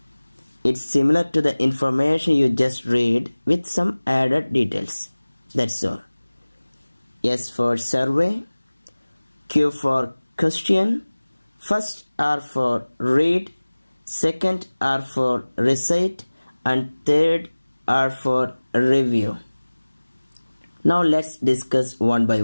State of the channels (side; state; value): both; inverted; correlation -1.00